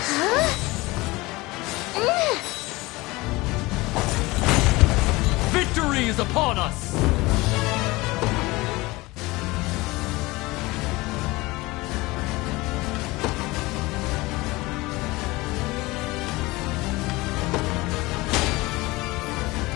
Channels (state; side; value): quieter; right; 21.6 dB